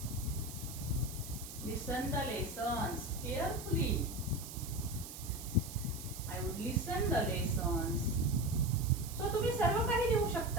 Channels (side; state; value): right; noise; hiss, 11 dB below the sound